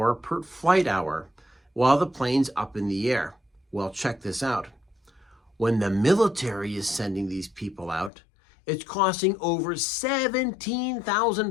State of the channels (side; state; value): right; drops out; at 8.1 s